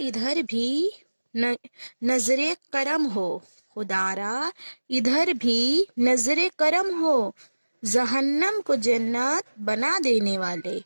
بھی نظر کرم ہو، خدارا ادھر بھی نظر کرم ہو، جہنم کو جنت بنا دینے والے،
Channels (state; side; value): inverted; both; correlation -1.00